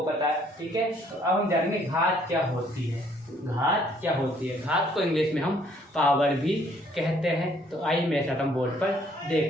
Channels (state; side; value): normal; both; correlation 0.63